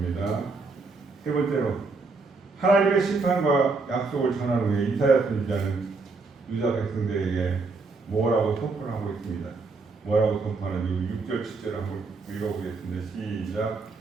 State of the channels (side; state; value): left; quieter; 4.0 dB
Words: 세 번째로 하나님의 심판과 약속을 전한 후에 이사야 선지자는 유다 백성들에게 뭐라고 선포를 하고 있습니다. 뭐라고 선포하는지 6절 7절 한번 읽어보겠습니다. 시작.